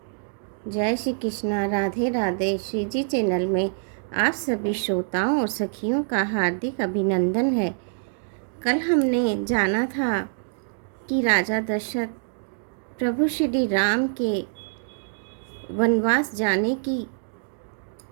जय श्री कृष्णा, राधे राधे। श्री जी चैनल में आप सभी श्रोताओं और सखियों का हार्दिक अभिनंदन है। कल हमने जाना था कि राजा दशरथ प्रभु श्री राम के वनवास जाने की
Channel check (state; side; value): silent; left; digital silence